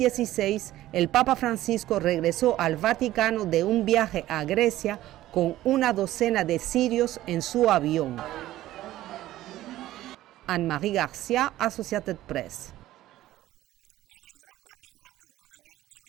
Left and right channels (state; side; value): quieter; left; 14.9 dB